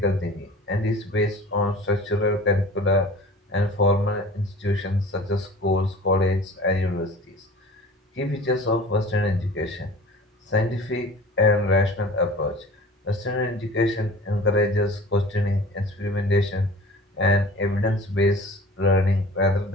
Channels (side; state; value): both; normal; correlation 0.42